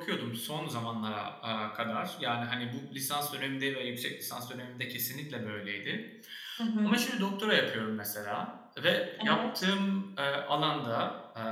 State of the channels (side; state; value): both; identical; correlation 1.00